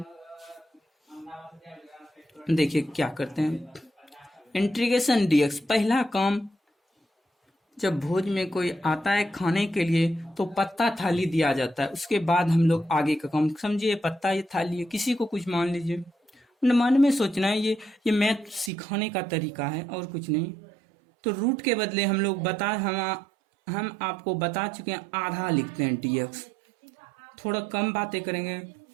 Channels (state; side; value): drops out; left; at 18.7 s